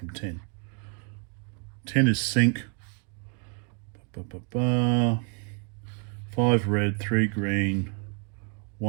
10 is sync. 5 red, 3 green,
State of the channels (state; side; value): quieter; left; 39.3 dB